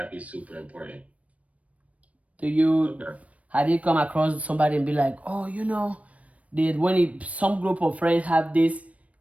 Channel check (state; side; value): late; left; 0.066 ms